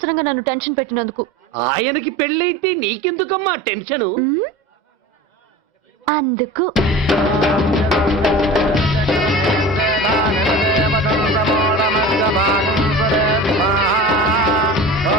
నన్ను టెన్షన్ పెట్టినందుకు. ఆయనకి పెళ్ళైతే నీకెందుకమ్మా టెన్షను? అందుకు.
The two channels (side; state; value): both; normal; correlation 0.35